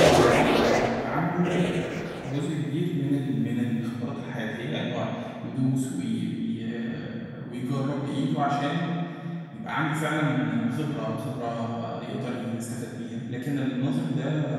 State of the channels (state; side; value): identical; both; correlation 1.00